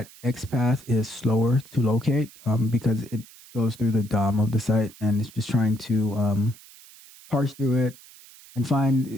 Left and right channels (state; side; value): noise; right; hiss, 22 dB below the sound